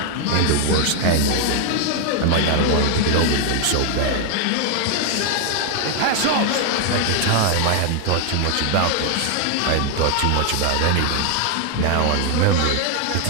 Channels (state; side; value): different; both; correlation 0.00